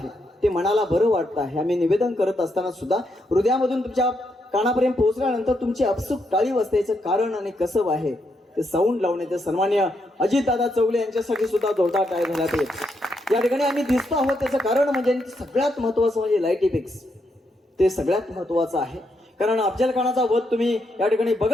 ते मनाला बरं वाटतं आहे. आम्ही निवेदन करत असताना सुद्धा हृदयामधून तुमच्या कानापर्यंत पोहोचल्यानंतर तुमची अपसुक टाळी वाजण्याचं कारण आणि कसब आहे ते साऊंड लावण्याचे सन्मान्य अजितदादा चौगले यांच्यासाठी सुद्धा जोरदार टाळ झाला पाहिजे. या ठिकाणी आम्ही दिसतो आहोत त्याचं कारण म्हणजे सगळ्यात महत्वाचं म्हणजे लाईट इफेक्ट्स, ते सगळ्यात महत्वाचं आहे. कारण अफजल खानाचा वध तुम्ही या ठिकाणी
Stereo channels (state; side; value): normal; both; correlation 0.79